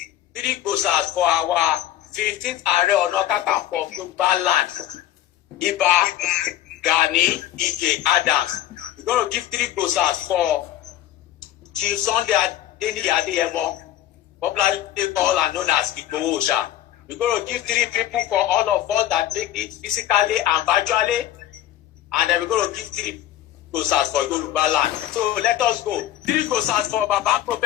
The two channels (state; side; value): quieter; right; 12.9 dB